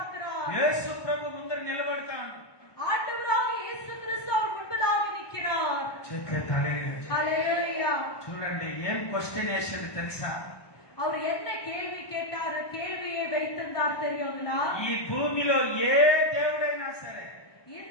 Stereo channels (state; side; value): late; right; 1.2 ms